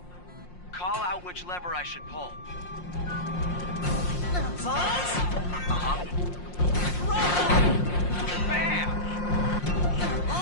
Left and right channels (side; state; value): right; late; 5.6 ms